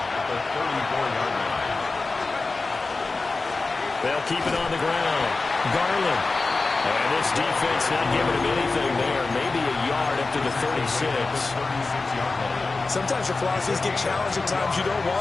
They'll keep it on the ground. Garland. And this defense not giving him anything there. Maybe a yard up to the 36. Sometimes your philosophies get challenged at times you don't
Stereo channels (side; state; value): right; quieter; 3.7 dB